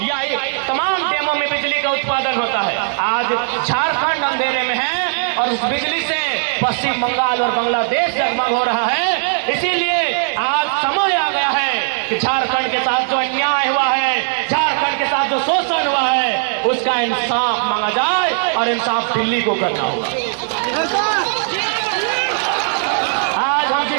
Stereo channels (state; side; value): silent; left; 67 dB below the other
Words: या तमाम डैमों में बिजली का उत्पादन होता है। आज झारखंड अंधेरे में है और उस बिजली से पश्चिम बंगाल और बांग्लादेश जगमग हो रहा है। इसीलिए आज समय आ गया है कि झारखंड के साथ जो अन्याय हुआ है, झारखंड के साथ जो शोषण हुआ है, उसका इंसाफ मांगा जाए और इंसाफ दिल्ली को करना होगा। आज हम